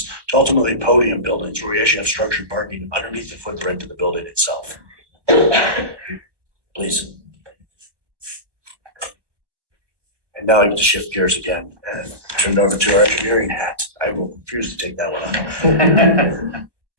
to ultimately podium buildings, where we actually have structured parking underneath the footprint of the building itself. Please. And now I get to shift gears again and turn it over to our engineering hat. I will refuse to take that one on.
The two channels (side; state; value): left; late; 1.1 ms